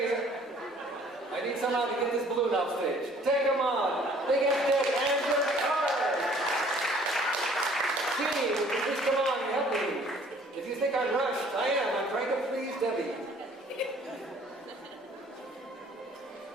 I need someone to get this balloon off stage. Take them on. Big F-Deck and your card. Gee, would you just come on and help me? If you think I'm rushed, I am. I'm trying to please Debbie.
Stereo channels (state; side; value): normal; both; correlation 0.56